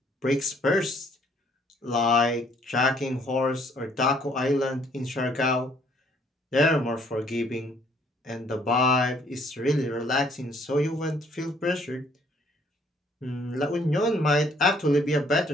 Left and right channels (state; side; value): normal; both; correlation 0.63